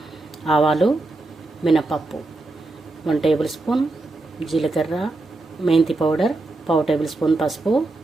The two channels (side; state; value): left; quieter; 3.1 dB